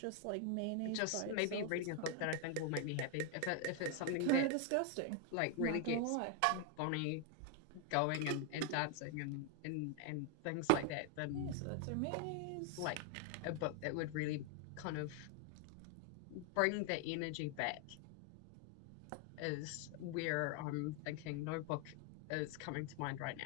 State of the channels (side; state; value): both; different; correlation 0.01